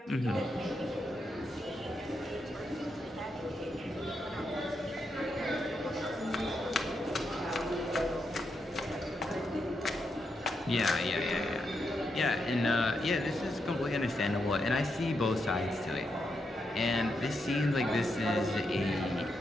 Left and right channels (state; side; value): normal; both; correlation 0.83